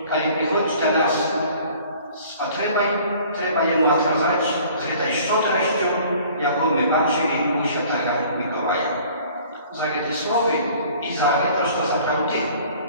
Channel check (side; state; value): both; inverted; correlation -0.51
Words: kiedy przychodzi do nas z potrzebą, trzeba jemu odkazać z tej szczodrością, jaką my patrzyli u Świętego Mikołaja. Za te słowy i za to, że naprawdę